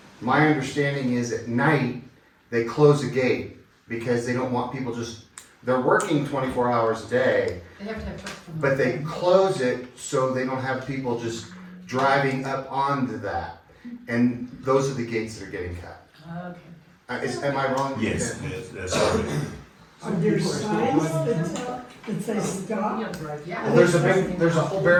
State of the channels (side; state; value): both; identical; correlation 1.00